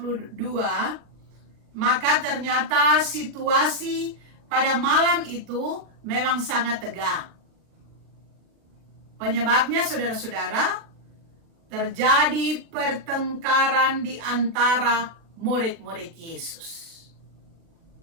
maka ternyata situasi pada malam itu memang sangat tegang. Penyebabnya saudara-saudara, terjadi pertengkaran di antara murid-murid Yesus.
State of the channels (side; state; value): left; late; 40 ms